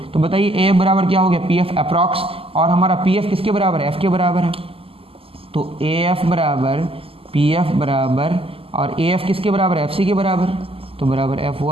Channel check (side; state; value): left; late; 0.27 ms